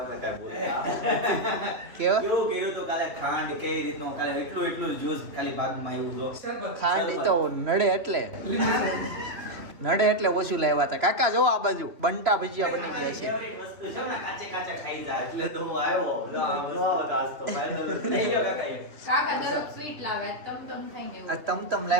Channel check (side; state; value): left; late; 3.3 ms